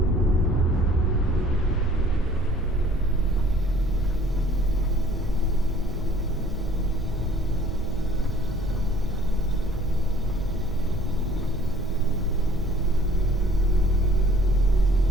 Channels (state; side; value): normal; both; correlation 0.55